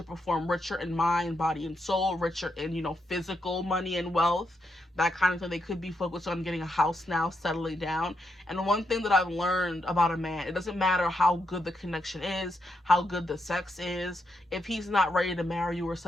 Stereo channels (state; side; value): normal; both; correlation 0.81